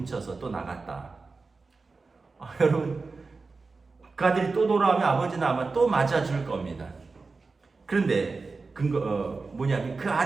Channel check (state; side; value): quieter; left; 4.1 dB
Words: 또 나갔다. 여러분 그 아들이 또 돌아오면 아버지는 아마 또 맞아줄 겁니다. 그런데 뭐냐면 그